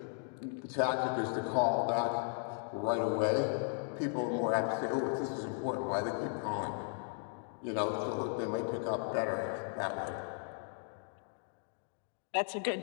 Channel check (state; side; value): silent; right; 54 dB below the other